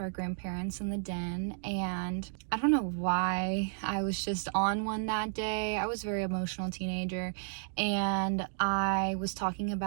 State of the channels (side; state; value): left; silent; digital silence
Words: our grandparents in the den. And I don't know why I was just on one that day. I was a very emotional teenager, and I was talking